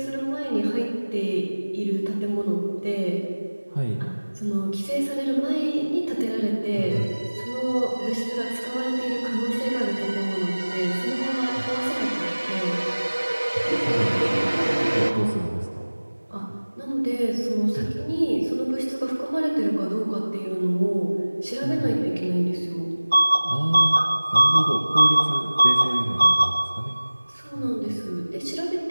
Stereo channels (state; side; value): inverted; both; correlation -1.00